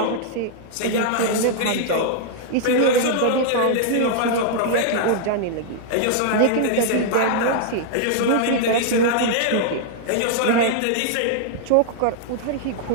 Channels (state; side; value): different; both; correlation -0.01